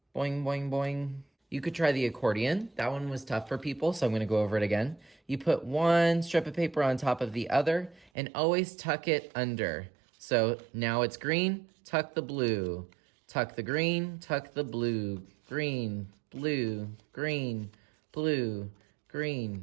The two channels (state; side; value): drops out; left; at 8.1 s